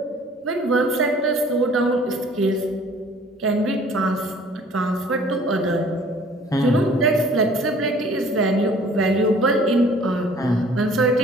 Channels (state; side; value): normal; both; correlation 0.53